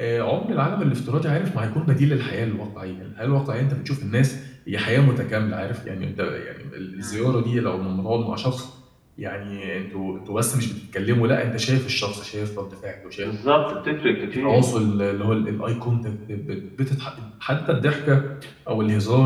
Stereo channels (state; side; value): identical; both; correlation 1.00